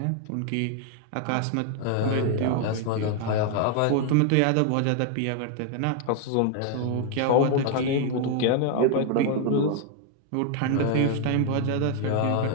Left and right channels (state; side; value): different; both; correlation 0.00